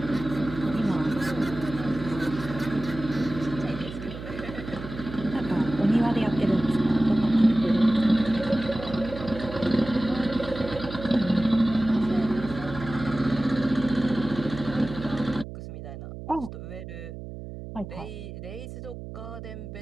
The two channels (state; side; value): noise; right; hum, 11 dB below the sound